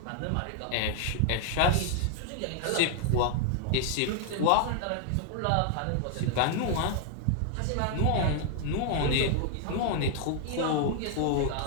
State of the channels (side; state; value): both; different; correlation 0.00